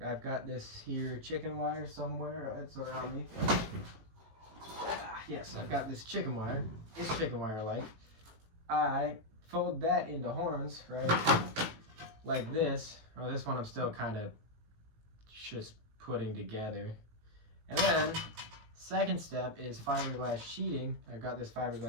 got this here chicken wire somewhere. It's around me. Yes, I've got this chicken wire. It's chicken wire like. I fold that into horns, right, like this. Or this one I'm still kind of just putting together. And then, second step is fiberglass sheeting. I've got this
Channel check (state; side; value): late; left; 18 ms